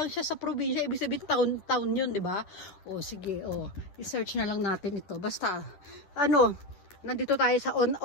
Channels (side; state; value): right; late; 10 ms